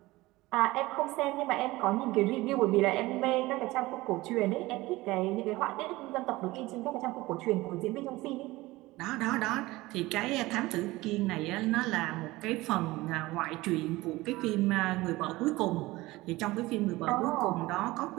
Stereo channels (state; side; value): quieter; left; 19.7 dB